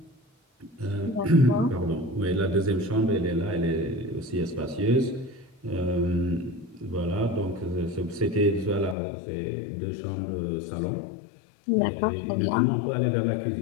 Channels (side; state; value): right; drops out; at 9.0 s